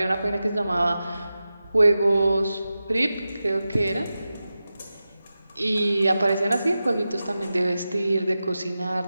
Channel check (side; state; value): both; inverted; correlation -0.93